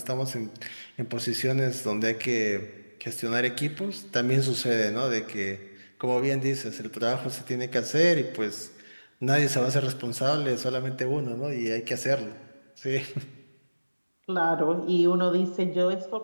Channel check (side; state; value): both; inverted; correlation -1.00